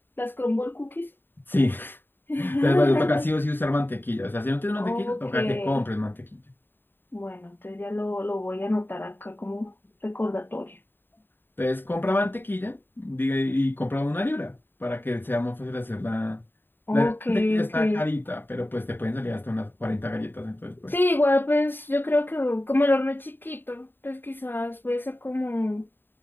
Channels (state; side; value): late; right; 0.095 ms